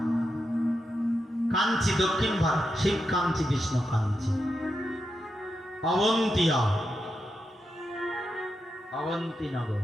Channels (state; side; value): normal; both; correlation 0.86